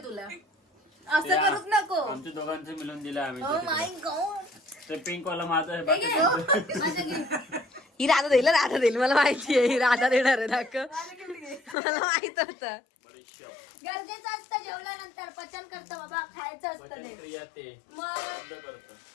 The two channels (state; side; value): drops out; right; at 11.8 s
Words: तुला. असं करूच नको. आमच्या दोघांचं मिळून दिलं आम्ही. Oh my God. ते पिंक वाला माझं आहे. माझं गिफ्ट. ही राधा देईल मला माहिती आहे. ही राधा देणार आहे दाखव. मला माहित होतं. गरजेचं असतं जेवल्यानंतर पचन करतं बाबा, खायचं असतं ते. मग